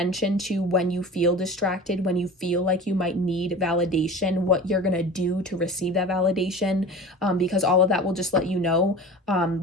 to when you feel distracted, when you feel like you might need validation, what you're going to do to receive that validation, because all of that will just let you know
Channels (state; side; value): normal; both; correlation 0.36